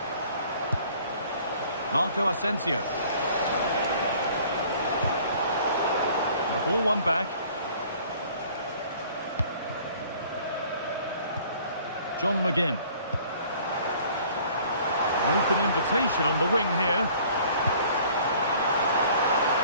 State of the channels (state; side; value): inverted; both; correlation -0.53